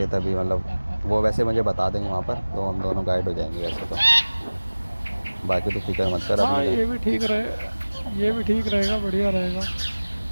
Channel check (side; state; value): both; inverted; correlation -1.00